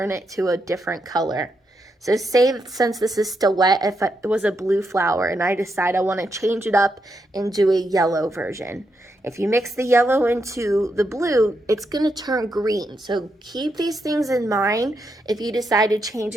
it to a different color. So say, since this is still wet, if it was a blue flower and I decide I want to change it up and do a yellow version. If you mix the yellow into the blue, it's going to turn green. So keep these things in mind if you decide to change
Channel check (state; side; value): normal; both; correlation 0.82